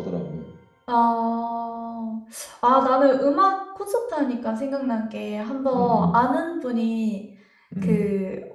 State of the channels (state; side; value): identical; both; correlation 1.00